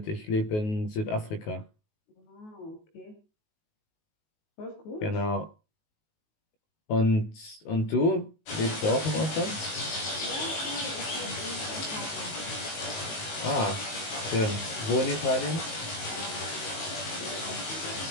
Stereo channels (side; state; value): right; late; 19 ms